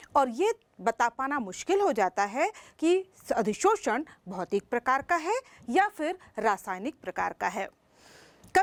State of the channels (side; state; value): both; identical; correlation 1.00